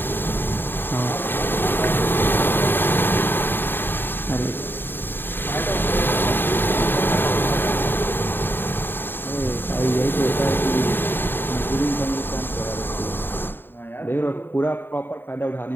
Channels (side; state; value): right; late; 0.097 ms